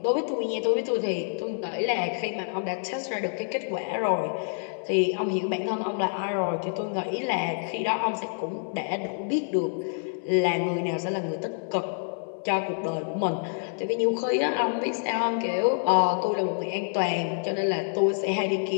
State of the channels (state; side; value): silent; right; 60 dB below the other